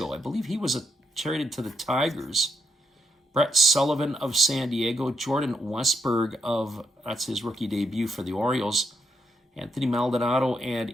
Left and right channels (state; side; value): normal; both; correlation 0.79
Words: I believe he was traded to the Tigers. Brett Sullivan of San Diego. Jordan Westberg that's his rookie debut for the Orioles. Anthony Maldonado